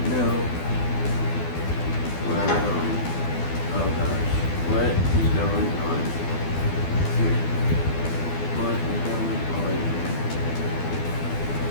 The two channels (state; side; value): late; right; 12 ms